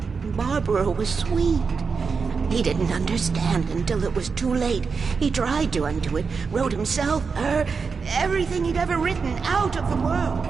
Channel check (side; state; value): left; quieter; 5.2 dB